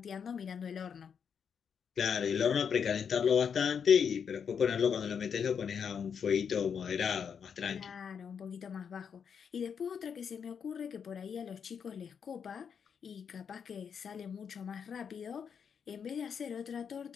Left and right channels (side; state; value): right; quieter; 7.0 dB